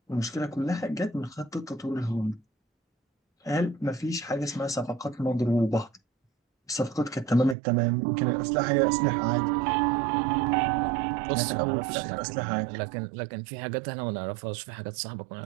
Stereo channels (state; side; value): drops out; left; at 7.6 s